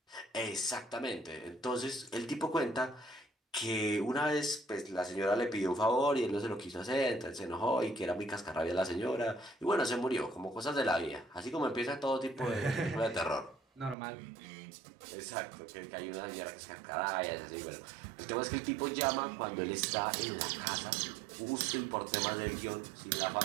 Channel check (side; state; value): left; drops out; at 14.0 s